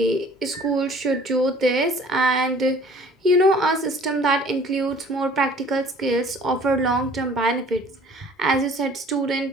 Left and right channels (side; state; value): both; normal; correlation 0.52